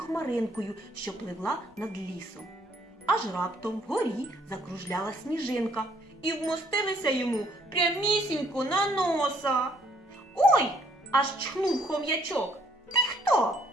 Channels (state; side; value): normal; both; correlation 0.65